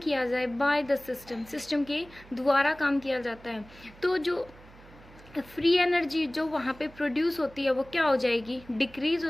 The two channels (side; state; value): right; noise; hum, 22 dB below the sound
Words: जाए बाय द सिस्टम के द्वारा काम किया जाता है तो जो फ्री एनर्जी जो वहाँ पे प्रोड्यूस होती है वो क्या हो जाएगी? डिक्रीज